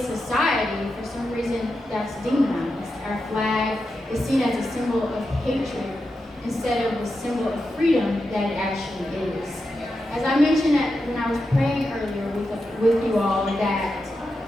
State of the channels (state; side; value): normal; both; correlation 0.88